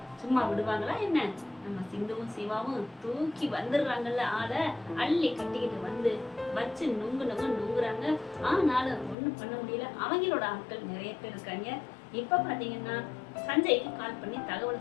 சும்மா விடுவாங்களா என்ன? நம்ம சிந்துவும் சிவாவும் தூக்கி வந்துடுறாங்கல்ல, ஆளை அள்ளி கட்டிக்கிட்டு வந்து வச்சு நுங்கு நுங்கு நுங்குறாங்க. ஆனாலும் ஒண்ணும் பண்ண முடியல. அவங்களோட ஆட்கள் நிறைய பேர் இருக்காங்க. இப்ப பாத்தீங்கன்னா சஞ்சய்க்கு கால் பண்ணி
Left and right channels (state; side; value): drops out; right; at 9.2 s